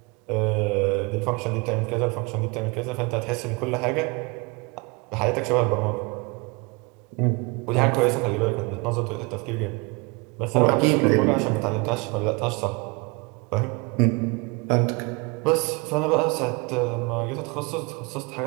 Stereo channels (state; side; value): quieter; left; 28.7 dB